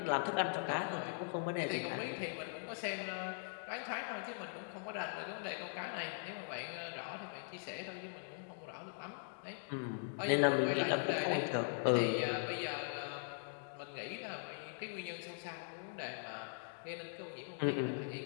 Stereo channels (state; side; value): silent; right; digital silence